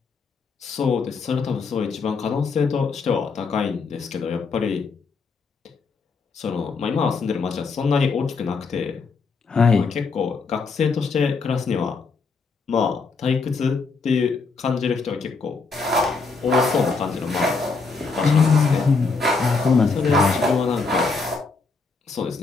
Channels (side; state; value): right; quieter; 4.4 dB